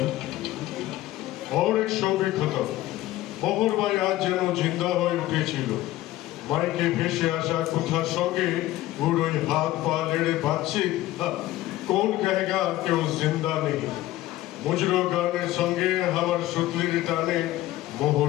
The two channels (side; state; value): right; quieter; 15.7 dB